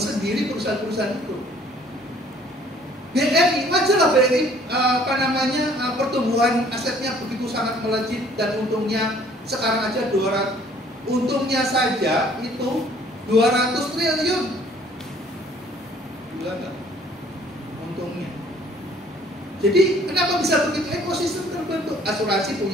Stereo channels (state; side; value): normal; both; correlation 0.57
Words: perusahaan-perusahaan itu. BRI, wajarlah BRI pertumbuhan asetnya begitu sangat melejit dan untungnya sekarang aja 200, untungnya saja itu 200 triliun. Gila nggak? Untungnya. Jadi kenapa bisa begitu? Ekosistem terbentuk. Asuransi